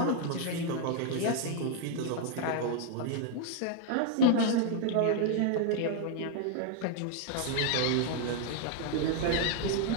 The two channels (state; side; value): different; both; correlation 0.01